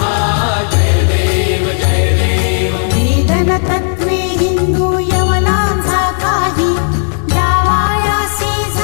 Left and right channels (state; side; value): silent; right; 72 dB below the other